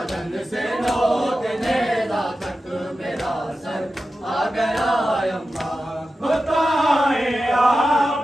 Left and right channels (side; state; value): both; normal; correlation 0.92